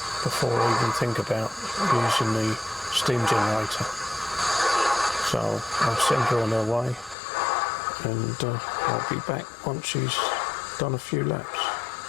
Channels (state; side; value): drops out; right; at 7.2 s